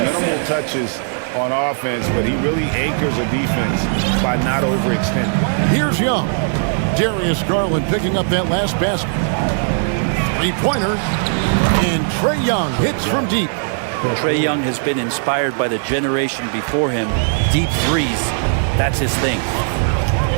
touches on offense, but he really anchors a defense by not overextending. Here's Young. Darius Garland picking up that last basket. 3-pointer. And Trae Young hits from deep. Trae Young has been inspired by the generation before him. Deep threes, that's his thing.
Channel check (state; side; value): silent; left; digital silence